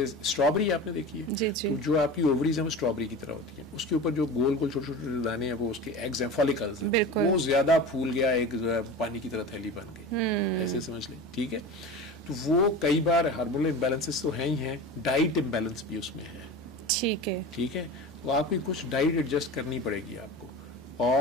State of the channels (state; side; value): normal; both; correlation 0.32